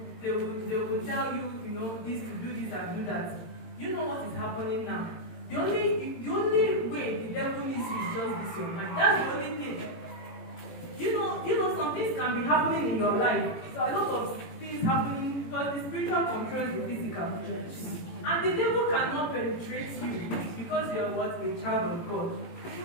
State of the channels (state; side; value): late; right; 18 ms